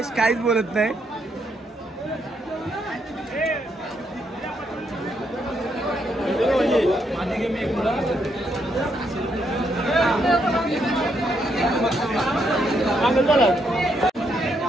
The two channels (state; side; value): normal; both; correlation 0.76